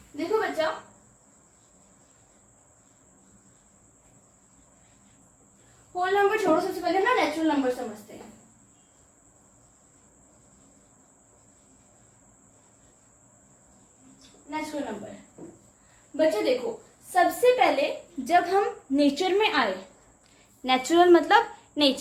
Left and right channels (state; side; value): identical; both; correlation 1.00